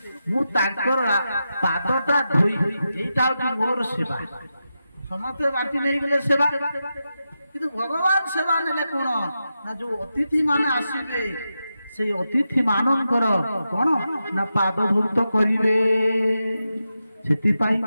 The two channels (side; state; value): both; inverted; correlation -0.89